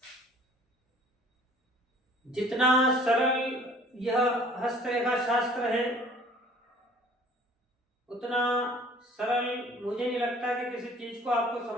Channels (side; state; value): both; normal; correlation 0.52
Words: जितना सरल यह हस्तरेखा शास्त्र है, उतना सरल मुझे नहीं लगता कि किसी चीज को आपको